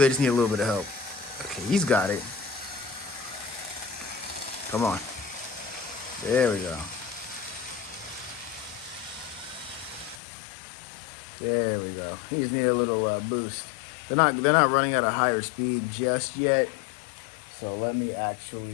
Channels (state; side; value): drops out; right; at 10.2 s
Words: just need a little bit of help? Okay, he's got it. Come on. There we go. There we go. He just need a little boost. They're not running at a higher speed just yet. So let me